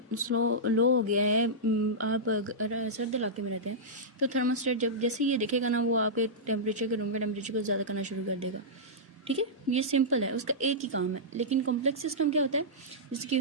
हो गया है, आप अगर सर्द इलाके में रहते हैं तो थर्मोस्टेट जब जैसे ये देखेगा ना, वो आपके टेम्परेचर के रूम के टेम्परेचर को ज़्यादा करना शुरू कर देगा, ठीक है। ये सिंपल है, उसका एक ही काम है। लेकिन कॉम्प्लेक्स सिस्टम क्या होता है? जैसे कि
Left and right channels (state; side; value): normal; both; correlation -0.12